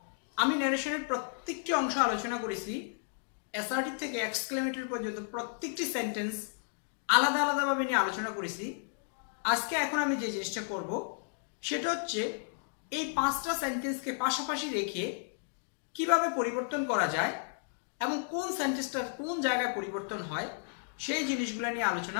আমি ন্যারেশনের প্রত্যেকটি অংশ আলোচনা করেছি, অ্যাসার্টিভ থেকে এক্সক্লেমেটরি পর্যন্ত প্রত্যেকটি সেন্টেন্স আলাদা আলাদাভাবে নিয়ে আলোচনা করেছি। আজকে এখন আমি যে জিনিসটা করব সেটা হচ্ছে এই 5টা সেন্টেন্সকে পাশাপাশি রেখে কিভাবে পরিবর্তন করা যায় এবং কোন সেন্টেন্সটার কোন জায়গায় পরিবর্তন হয় সেই জিনিসগুলো নিয়ে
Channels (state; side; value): silent; right; digital silence